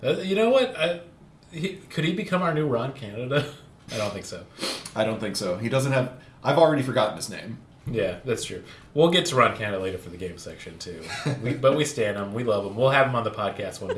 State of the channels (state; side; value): identical; both; correlation 1.00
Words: You know what? Could he become our new Ron Canada? I don't think so. I don't think so. He doesn't have... I've already forgotten his name. Yeah, that's true. We'll get to Ron Canada later for the game section, too. But we stand him. We love him. We'll have him on the podcast one